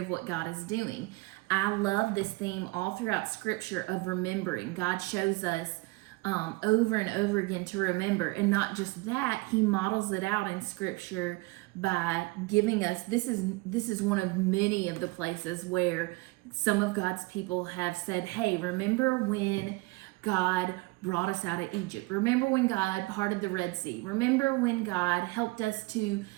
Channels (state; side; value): quieter; left; 23.6 dB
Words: what God is doing. I love this theme all throughout Scripture of remembering. God shows us over and over again to remember, and not just that, he models it out in Scripture by giving us, this is one of many of the places where some of God's people have said, hey, remember when God brought us out of Egypt. Remember when God parted the Red Sea. Remember when God helped us to